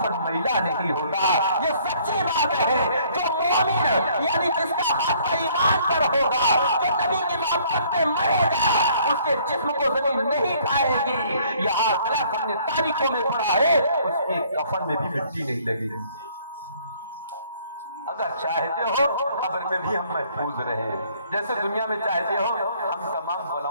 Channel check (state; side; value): inverted; both; correlation -0.61